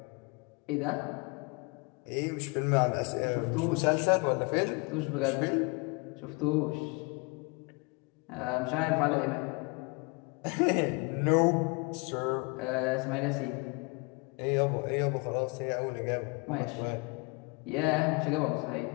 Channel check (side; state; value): right; quieter; 29.9 dB